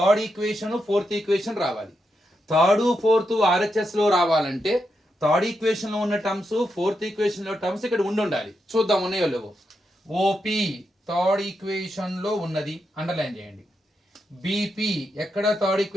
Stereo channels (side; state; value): both; normal; correlation 0.84